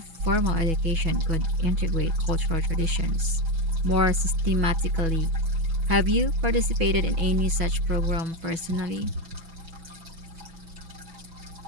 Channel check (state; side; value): late; left; 6.1 ms